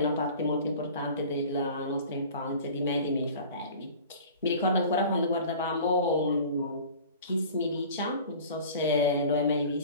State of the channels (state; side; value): inverted; both; correlation -0.42